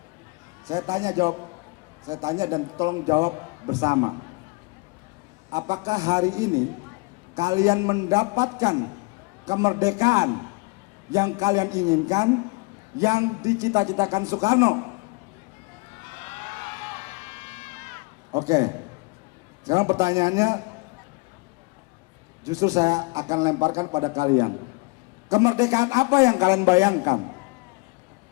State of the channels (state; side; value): quieter; right; 28.9 dB